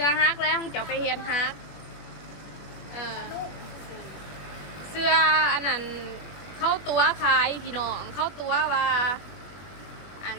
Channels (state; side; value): late; right; 21 ms